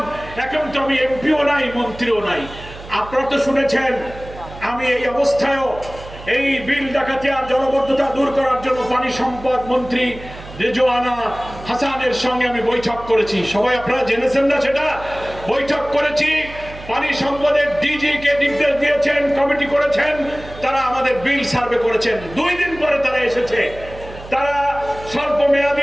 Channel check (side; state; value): right; noise; hum, 16 dB below the sound